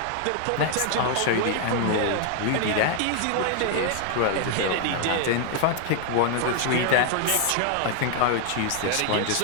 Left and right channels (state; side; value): different; both; correlation 0.00